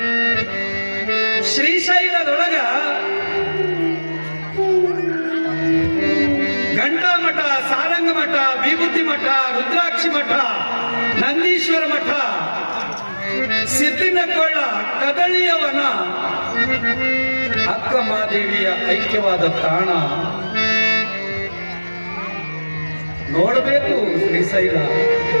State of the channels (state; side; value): inverted; both; correlation -1.00